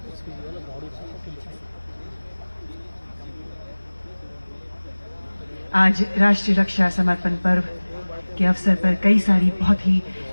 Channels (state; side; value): inverted; both; correlation -1.00